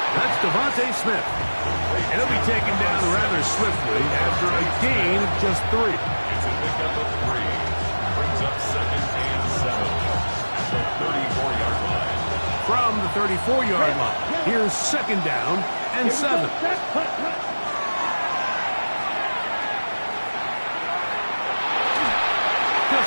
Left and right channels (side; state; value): both; inverted; correlation -1.00